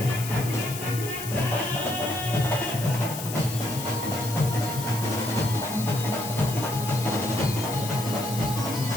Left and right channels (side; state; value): left; noise; hiss, 8 dB below the sound